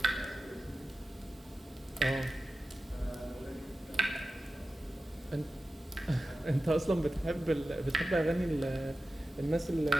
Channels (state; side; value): normal; both; correlation 0.93